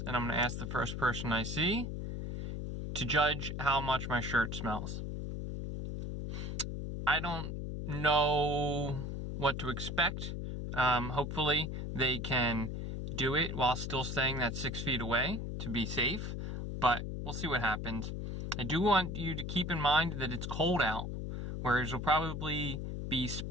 and I'm going to ask the first person I see to judge how much my shirt smells. I don't know what to expect. Hopefully they can do it while still staying that 6 feet away to be safe, but we'll see what happens. I do want you to keep in mind that it's cold out, whereas it'll probably be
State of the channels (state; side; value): noise; left; hum, 4 dB below the sound